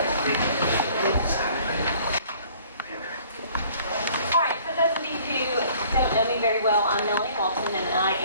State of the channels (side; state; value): both; inverted; correlation -0.55